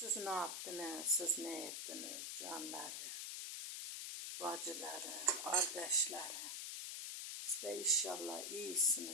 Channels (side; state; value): left; noise; hiss, 5 dB below the sound